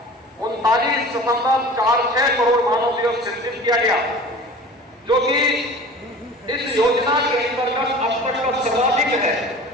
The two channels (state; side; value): normal; both; correlation 0.40